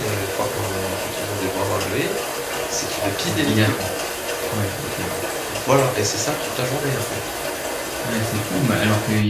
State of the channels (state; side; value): identical; both; correlation 1.00